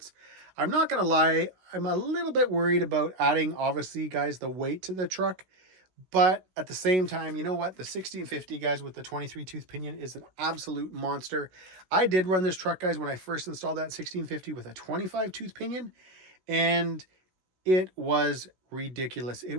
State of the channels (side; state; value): left; late; 16 ms